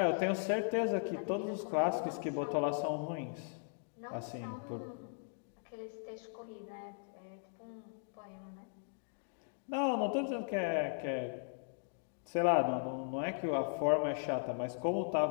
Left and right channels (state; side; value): silent; right; digital silence